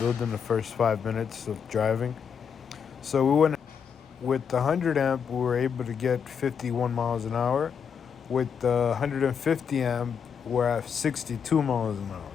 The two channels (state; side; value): quieter; right; 7.0 dB